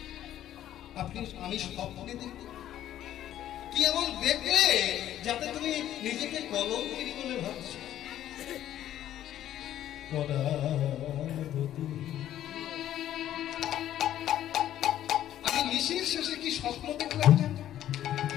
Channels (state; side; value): quieter; right; 12.0 dB